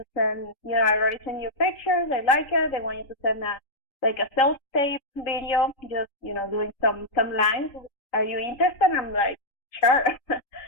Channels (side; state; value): right; late; 3.8 ms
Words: send. I already sent you pictures. I like it. They want you to send a self-tape video, just doing some lines. Are you interested? I'm like, sure.